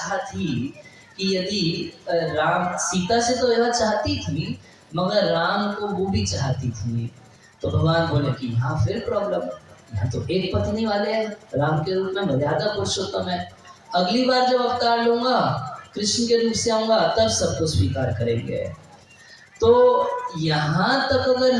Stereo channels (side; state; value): both; identical; correlation 1.00